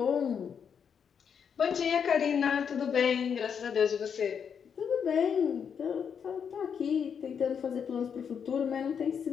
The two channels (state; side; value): quieter; right; 7.2 dB